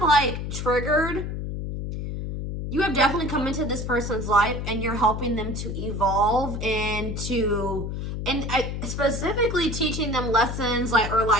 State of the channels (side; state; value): left; noise; hum, 4 dB below the sound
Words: like triggered, you have definitely come into this person's life and you're helping them to evolve and specifically teaching them lessons, like, or